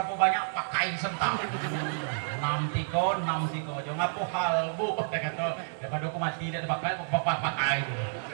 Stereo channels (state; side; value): silent; left; digital silence